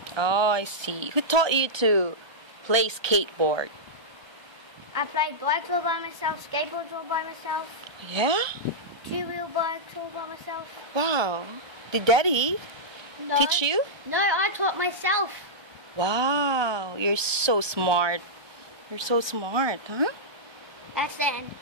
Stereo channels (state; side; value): late; left; 1.2 ms